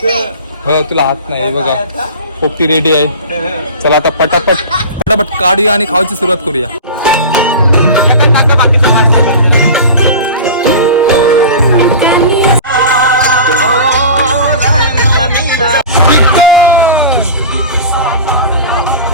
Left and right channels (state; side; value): inverted; both; correlation -0.33